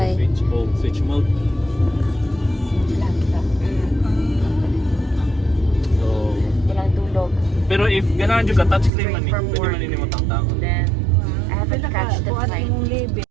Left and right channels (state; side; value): drops out; left; at 8.9 s